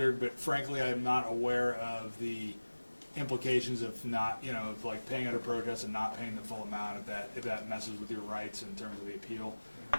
but frankly, I'm not aware of the implications of not, of like paying under protest and not paying the full amount if that messes with your rights in terms of the appeal.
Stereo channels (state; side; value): inverted; both; correlation -1.00